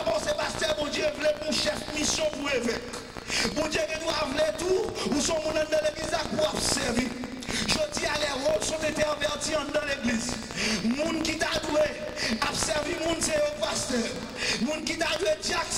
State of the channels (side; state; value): both; identical; correlation 1.00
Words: penser pasteur, mon Dieu voulait pour chef mission pour évêque. Mon Dieu qui doit vouloir tout, ou son monde dans l'église pour observer. Je dis à les rôles sont intervertis dans l'église. Moun qui t'a doué, observe servi moun c'est au pasteur. Moun qui t'a joué diac